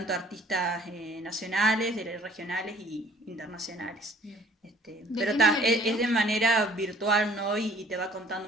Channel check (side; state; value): both; normal; correlation 0.55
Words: artistas nacionales, regionales y internacionales. Pero es de manera virtual, ¿no? Y te va contando